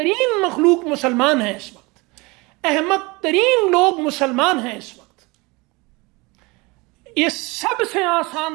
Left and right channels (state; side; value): quieter; left; 25.1 dB